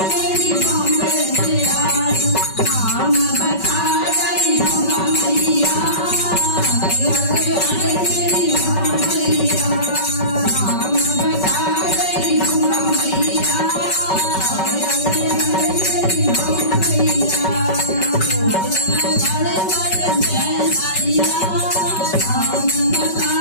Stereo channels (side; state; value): right; late; 5.3 ms